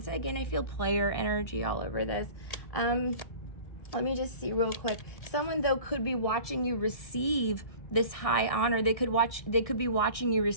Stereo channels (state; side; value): late; right; 1.6 ms